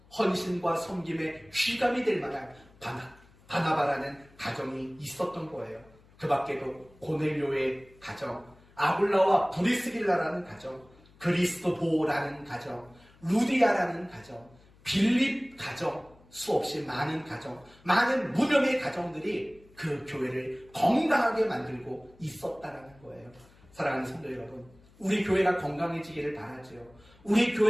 헌신과 섬김에 휘감이 될 만한 바나바라는 가정이 있었던 거예요. 그 밖에도 고넬료의 가정, 아굴라와 브리스길라라는 가정, 그리스도보라는 가정, 루디아라는 가정, 빌립 가정, 수없이 많은 가정, 많은 무명의 가정들이 그 교회를 건강하게 만들고 있었다라는 거예요. 사랑하는 성도 여러분, 우리 교회가 건강해지기를 바라지요. 우리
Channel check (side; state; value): left; noise; hum, 27 dB below the sound